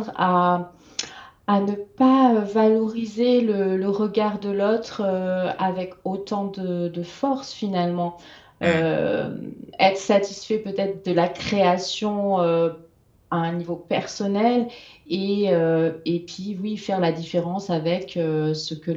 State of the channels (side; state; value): both; identical; correlation 1.00